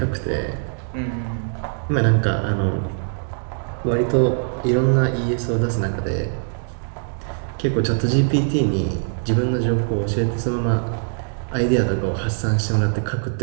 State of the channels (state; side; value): silent; left; digital silence